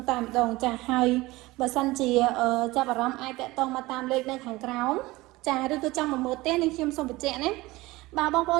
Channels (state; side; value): quieter; left; 20.1 dB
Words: តែម្ដងចាហើយបើសិនជាចាប់អារម្មណ៍អាចតាក់ទងមកតាមលេខនៅខាងក្រោមចាឬក៏ចង់មកមើលផ្ទះនេះខ្ញុំសូមបញ្ជាក់ណាបើបងប្អូ